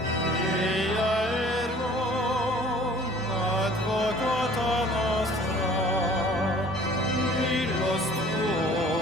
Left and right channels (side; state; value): both; normal; correlation 0.51